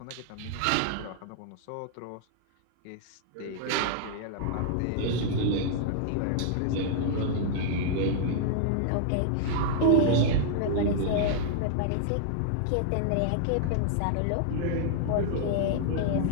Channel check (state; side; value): different; both; correlation -0.01